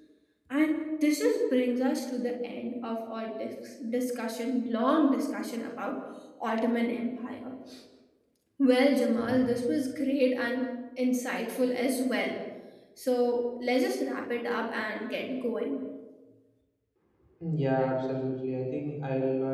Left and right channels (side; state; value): both; identical; correlation 1.00